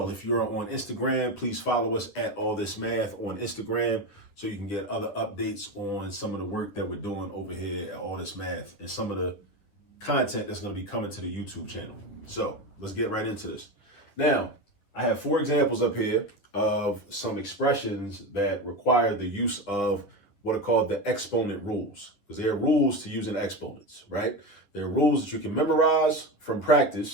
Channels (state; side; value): late; right; 10 ms